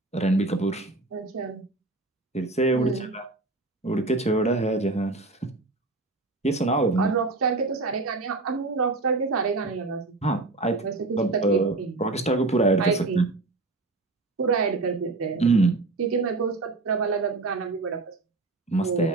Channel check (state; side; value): quieter; left; 3.3 dB